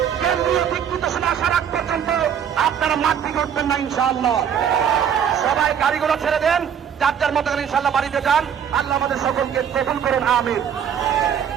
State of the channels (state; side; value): quieter; left; 8.4 dB